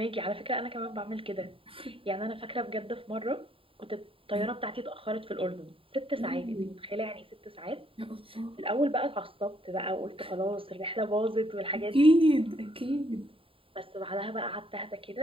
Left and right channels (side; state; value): left; late; 0.26 ms